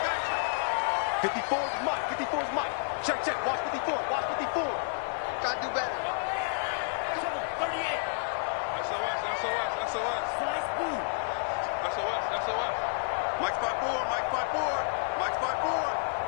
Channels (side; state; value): right; silent; 58 dB below the other